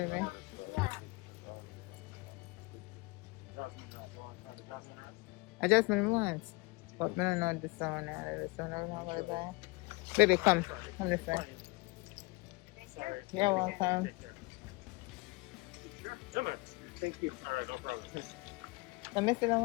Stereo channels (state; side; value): quieter; right; 25.9 dB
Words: Adjustment once. But I don't know this one now. This one I don't know what to go. Baby, come. Come this way. You're welcome. Come on. Thank you. All right, no problem. I missed that